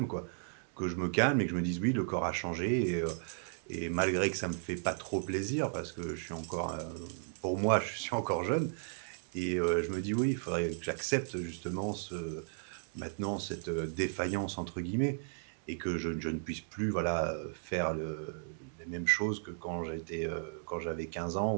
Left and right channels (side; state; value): left; silent; digital silence